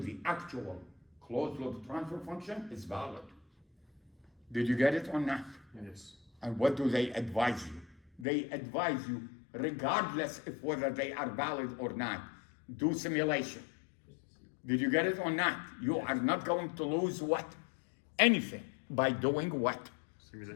the actual closed loop transfer function is valid. Did you get it or not? Yes. And what do they advise you? They advise you, regardless of whether they are valid or not, do simulation. Did you get it or not? You are not going to lose what? Anything by doing what?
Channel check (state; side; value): drops out; right; at 8.2 s